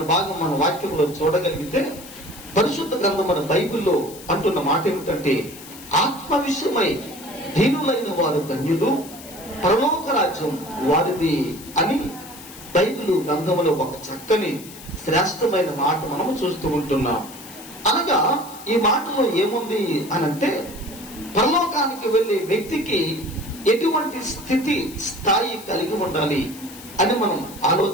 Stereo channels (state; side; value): noise; left; hiss, 17 dB below the sound